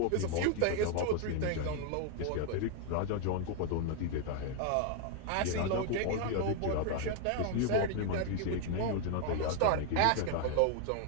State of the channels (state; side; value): different; both; correlation 0.00